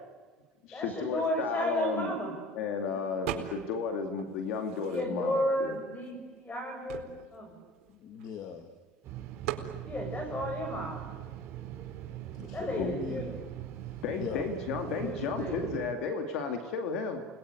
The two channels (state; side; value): normal; both; correlation 0.38